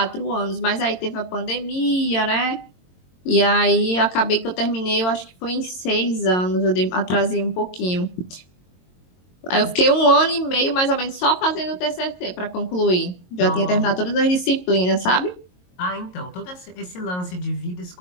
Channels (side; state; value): right; late; 22 ms